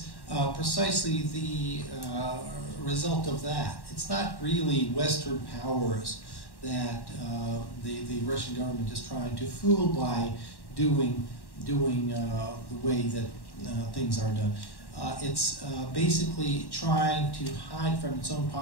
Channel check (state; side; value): late; right; 1.1 ms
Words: precisely the result of that. It's not really Western powers that the Russian government is trying to fool by doing the way that things are done. It's basically trying to hide from its own